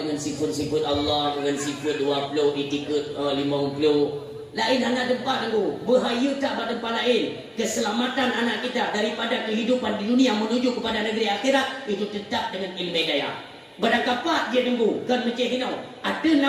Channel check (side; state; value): both; identical; correlation 1.00